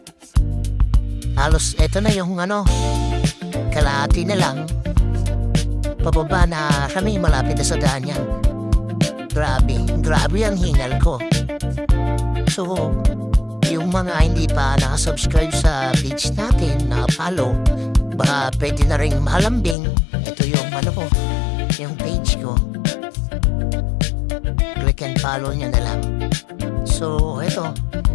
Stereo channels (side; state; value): right; drops out; at 19.8 s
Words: Halos eto na yung kalahati na lang. Pababa na kami, malapit na sa daan yan. Grabe ang hingal ko. So, yung mga hindi pa nakasubscribe sa page natin, na-follow, baka pwede na rin malambing. Ito yung yung page ko. Click and follow nyo na lang. So, ito,